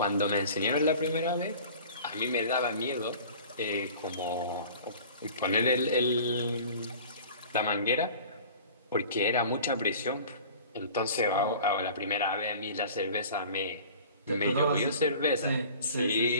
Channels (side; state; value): both; inverted; correlation -0.43